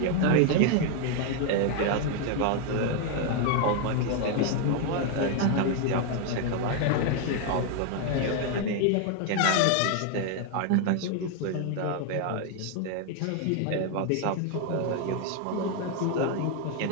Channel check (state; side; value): different; both; correlation 0.01